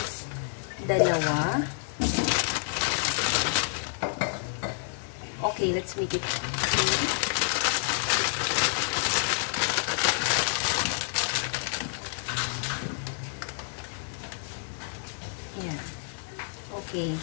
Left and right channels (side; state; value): right; silent; digital silence